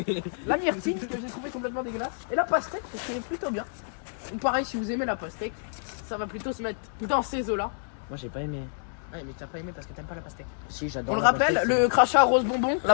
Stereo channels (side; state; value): right; silent; 59 dB below the other